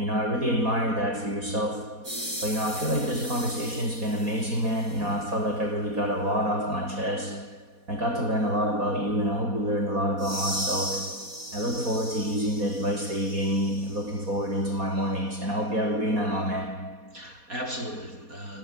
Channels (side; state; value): left; late; 4.2 ms